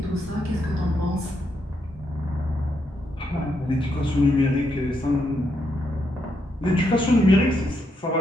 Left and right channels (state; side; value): normal; both; correlation 0.79